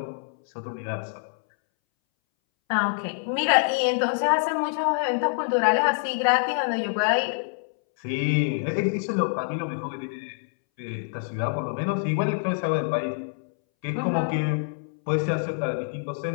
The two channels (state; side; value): silent; right; 61 dB below the other